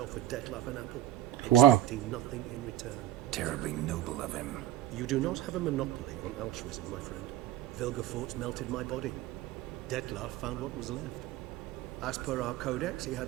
Dettlaff an apple, Wow. expecting nothing in return. Terribly noble of him. You do not have a monopoly on altruism, my friend. Vilgefortz melted my body. Dettlaff found what was left. As per our codex, he had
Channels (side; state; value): left; quieter; 13.2 dB